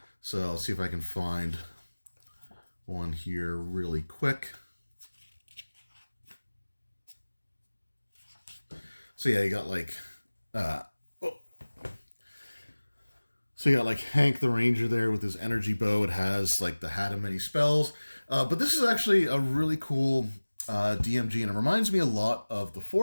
So I'll see if I can find one here really quick. So yeah, you got like so you got like Hank the Ranger there with his energy bow. It has like the hat of many spells. But this is actually a really cool DMG, and it reminds me a lot of the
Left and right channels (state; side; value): inverted; both; correlation -1.00